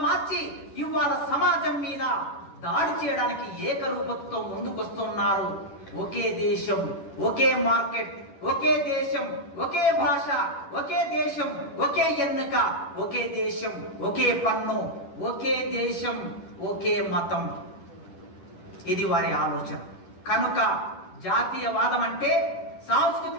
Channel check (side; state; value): right; late; 10 ms